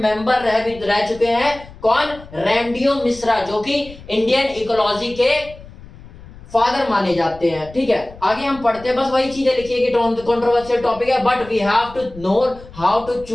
रह चुके हैं कौन, रैमडियो मिश्रा, जो कि इंडियन इकोलॉजी के फादर माने जाते हैं। ठीक है, आगे हम पढ़ते हैं, बस वही चीजें लिखिए कि कंट्रोवर्शियल टॉपिक है, but we have to know how to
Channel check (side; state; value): left; noise; rumble, 19 dB below the sound